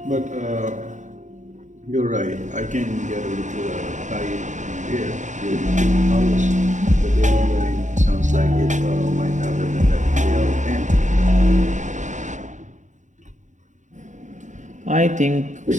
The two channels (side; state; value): left; late; 0.35 ms